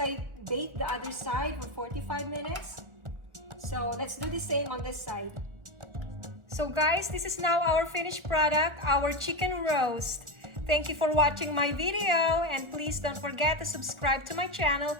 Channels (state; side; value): late; left; 1.4 ms